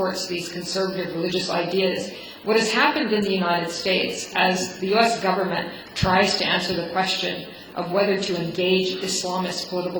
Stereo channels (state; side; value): identical; both; correlation 1.00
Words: these conservative religious ideas. What has happened in the United States as the U.S. government tries to answer the question of whether to engage Islamist